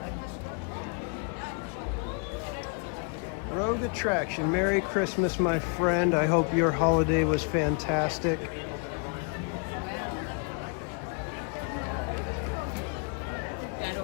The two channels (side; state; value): right; quieter; 38.7 dB